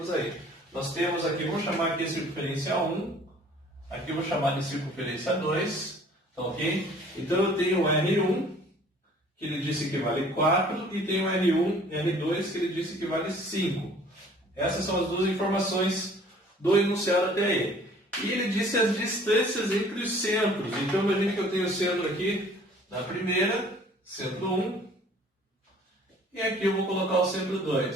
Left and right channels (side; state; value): both; normal; correlation 0.53